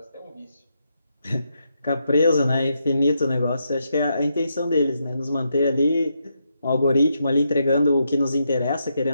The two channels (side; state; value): both; inverted; correlation -0.82